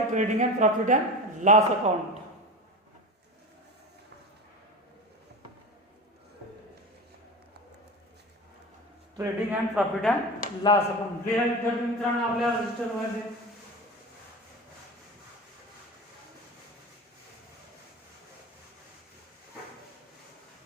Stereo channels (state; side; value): normal; both; correlation 0.28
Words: trading and profit and loss account. Trading and profit and loss account लिहा विद्यार्थी मित्रांनो आपल्या रजिस्टर मध्ये.